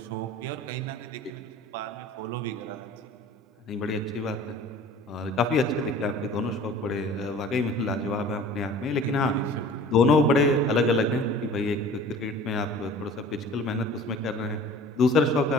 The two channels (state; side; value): normal; both; correlation 0.45